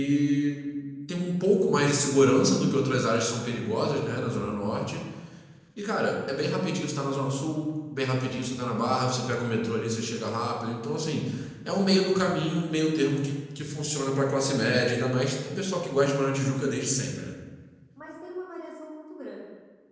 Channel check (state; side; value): identical; both; correlation 1.00